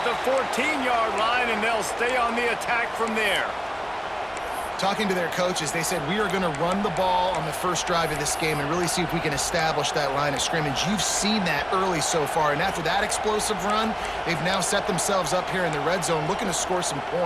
the 14-yard line, and they'll stay on the attack from there. Talking to their coaches, they said, we are going to run the ball on the first drive of this game and really see if we can establish that line of scrimmage. You've seen that early so far, and after that explosive run, they've now set themselves up here in the red zone looking to score some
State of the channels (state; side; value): identical; both; correlation 1.00